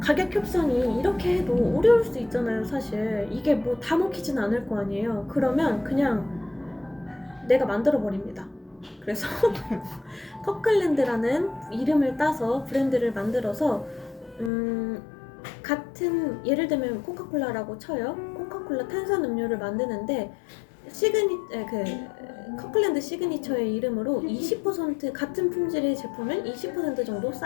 협상이 이렇게 해도 어려울 수 있잖아요. 사실 이게 뭐 다 먹히진 않을 거 아니에요. 그러면 그냥 내가 만들어 버립니다. 그래서 커클랜드라는 이름을 따서 브랜드를 만들어서 같은, 예를 들면 코카콜라라고 쳐요. 코카콜라 탄산음료를 만드는데 커클랜드 시그니처의 이름으로 20% 같은 품질의 제품을 20% 정도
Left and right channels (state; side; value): drops out; right; at 14.5 s